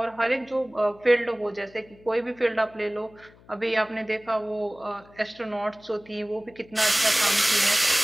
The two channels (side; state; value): left; noise; hum, 26 dB below the sound